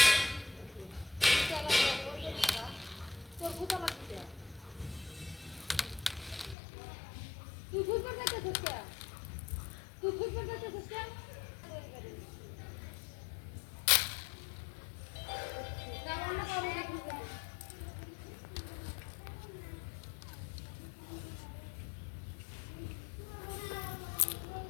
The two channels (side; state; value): right; drops out; at 6.6 s